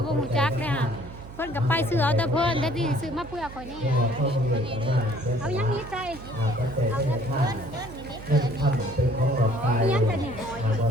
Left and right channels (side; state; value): right; noise; hum, 15 dB below the sound